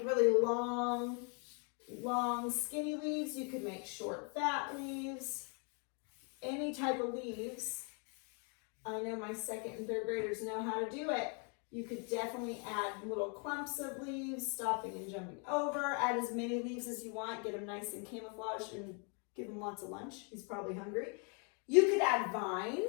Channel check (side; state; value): right; quieter; 37.5 dB